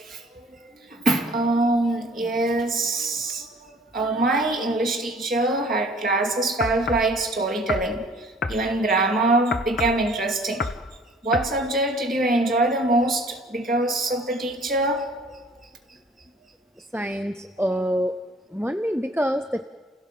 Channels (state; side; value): normal; both; correlation 0.53